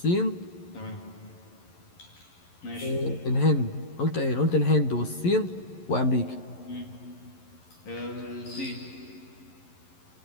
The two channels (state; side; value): late; right; 11 ms